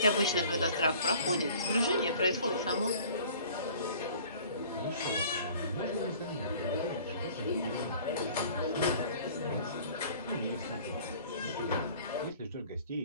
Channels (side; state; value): both; inverted; correlation -0.49